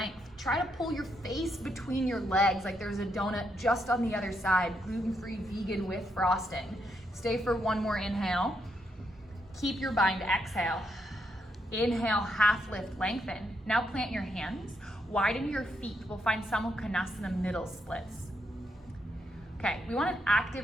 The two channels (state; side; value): normal; both; correlation 0.79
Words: Try to pull your face between your legs like there's a donut just on the other side, gluten-free, vegan with frosting. Stay for one more inhale. Keep your bind, exhale. Inhale, half lift, lengthen. Now plant your hands, widen your feet. We'll find Samukhanasana middle splits. Okay, we want an